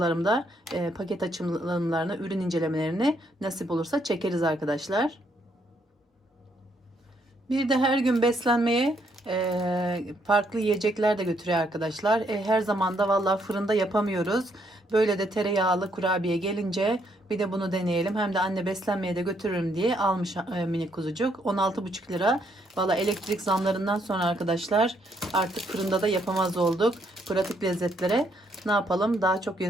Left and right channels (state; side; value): normal; both; correlation 0.72